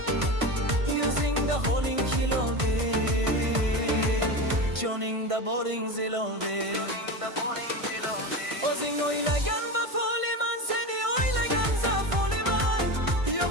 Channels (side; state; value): left; late; 1.5 ms